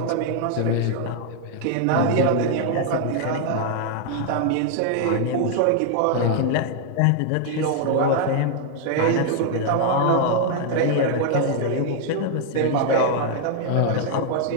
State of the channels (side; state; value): both; different; correlation 0.00